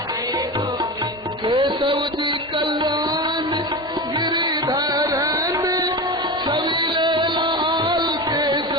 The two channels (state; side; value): normal; both; correlation 0.25